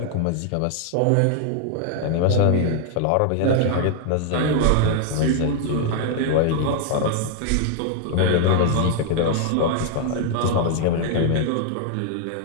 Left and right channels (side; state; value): both; different; correlation 0.00